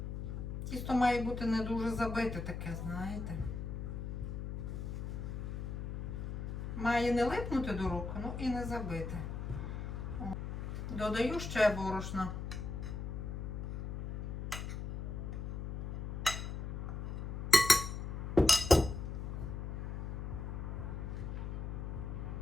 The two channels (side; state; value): left; noise; hum, 4 dB below the sound